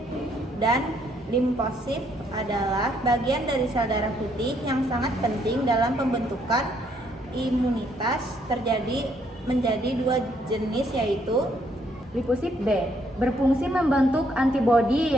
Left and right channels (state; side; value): normal; both; correlation 0.70